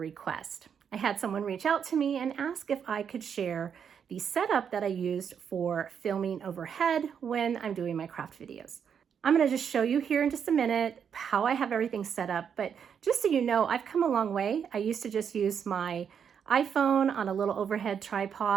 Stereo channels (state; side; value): quieter; left; 7.5 dB